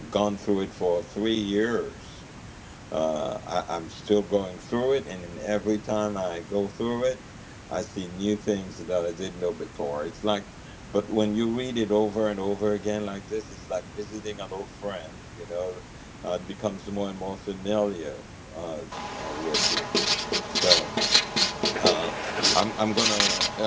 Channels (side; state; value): both; identical; correlation 1.00